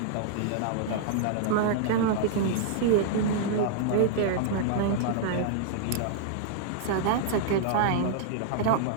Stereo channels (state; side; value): different; both; correlation -0.01